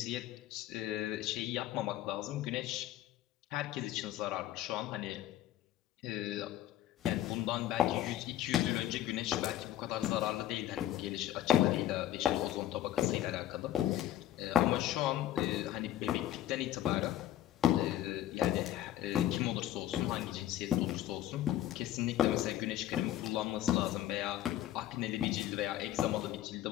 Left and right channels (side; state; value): right; quieter; 12.8 dB